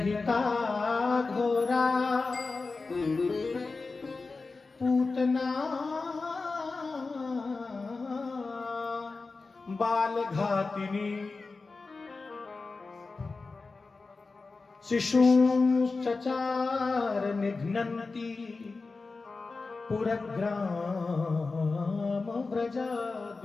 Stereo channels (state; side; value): quieter; right; 3.9 dB